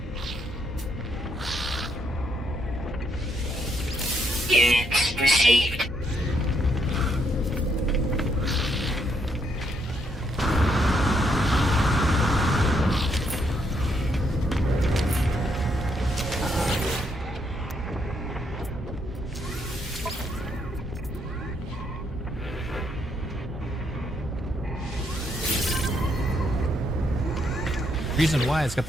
Units received. Reason why it's got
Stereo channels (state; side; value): normal; both; correlation 0.75